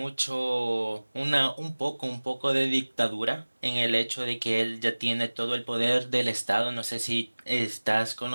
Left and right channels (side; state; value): both; inverted; correlation -1.00